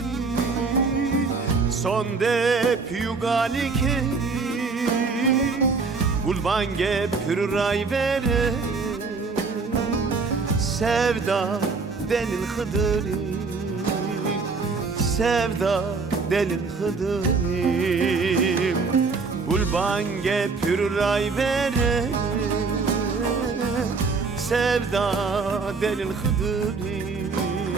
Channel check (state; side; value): quieter; left; 4.5 dB